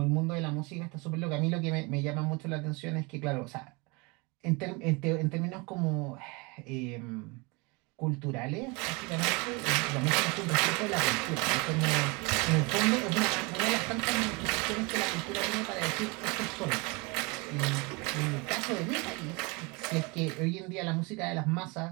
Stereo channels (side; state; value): left; quieter; 27.8 dB